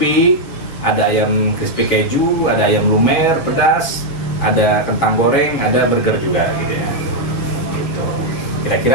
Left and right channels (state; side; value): late; right; 7.6 ms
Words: ada ayam crispy keju, ada ayam lumer pedas, ada kentang goreng, ada burger juga gitu ya. Gitu.